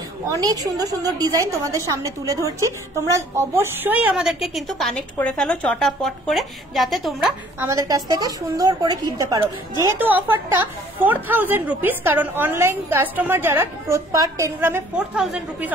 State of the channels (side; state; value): both; normal; correlation 0.56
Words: অনেক সুন্দর সুন্দর ডিজাইন তোমাদের সামনে তুলে ধরছি। তোমরা অবশ্যই আমাদেরকে কিন্তু কানেক্ট করে ফেলো চটাপট করে, যাতে তোমরা আমাদের কাছ থেকে সুন্দর করে কিনতে পারো। যেহেতু অফারটা 4000 রুপিস, কারণ অনলাইন কাস্টমার যারা পার 10 গ্রামে 4000 রুপিস